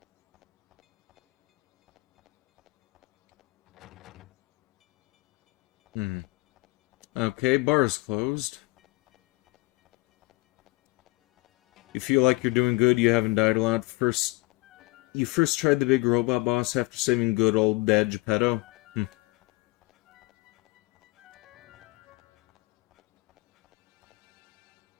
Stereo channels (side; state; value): right; quieter; 24.0 dB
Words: Okay, bar's closed. You feel like you're doing good, you haven't died a lot. You first tried the big robot boss after saving good old Dad Geppetto?